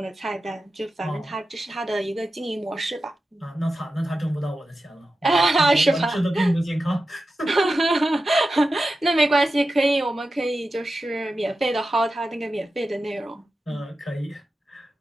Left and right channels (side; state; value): both; normal; correlation 0.92